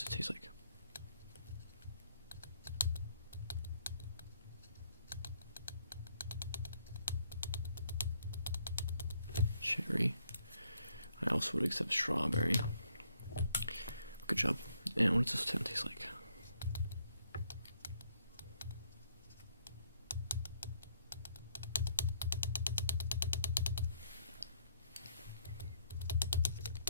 it taste like? Cherry. I also would accept strawberry. Good job. And what does this taste like?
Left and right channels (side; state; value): both; inverted; correlation -0.70